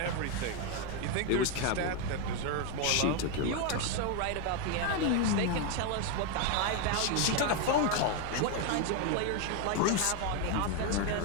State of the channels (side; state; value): both; different; correlation 0.01